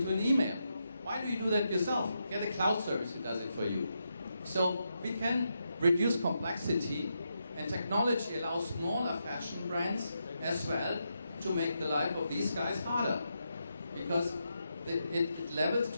an email. Why do you do that yourself? Get a cloud service who does it for you. So we can reduce complexity, and technology allows smaller fashion brands as well to make the life of these guys harder, because it levels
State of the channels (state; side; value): inverted; both; correlation -0.84